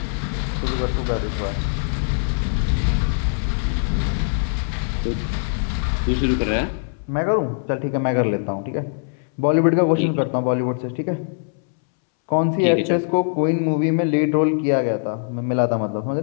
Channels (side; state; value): right; silent; 64 dB below the other